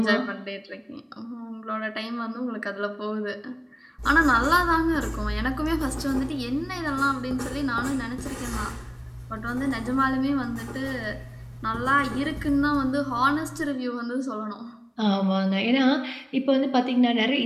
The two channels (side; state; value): both; identical; correlation 1.00